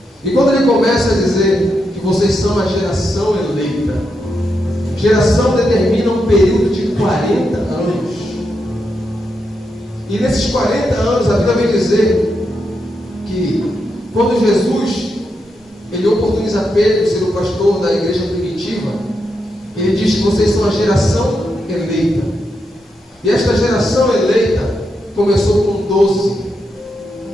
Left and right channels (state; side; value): normal; both; correlation 0.84